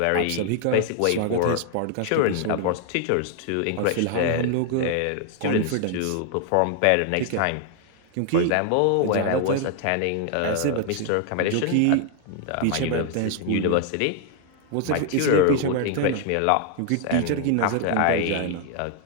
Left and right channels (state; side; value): different; both; correlation 0.00